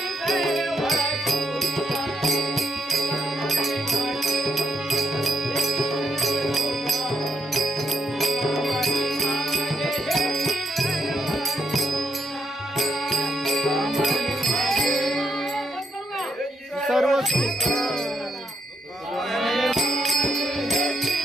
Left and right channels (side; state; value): both; normal; correlation 0.76